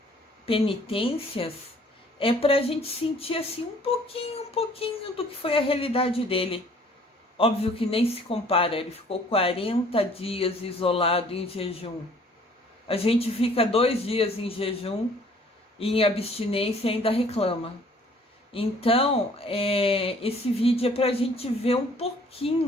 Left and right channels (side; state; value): both; normal; correlation 0.56